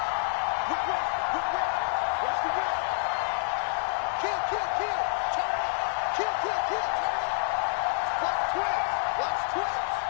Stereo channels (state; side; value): silent; right; 59 dB below the other